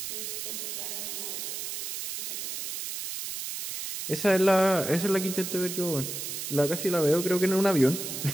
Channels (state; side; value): noise; right; hiss, 5 dB below the sound